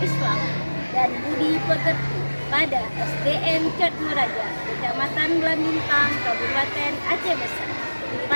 dan budi pekerti pada SDN Cotmeraja, Kecamatan Blambintang, Kabupaten Aceh Besar.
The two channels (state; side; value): inverted; both; correlation -1.00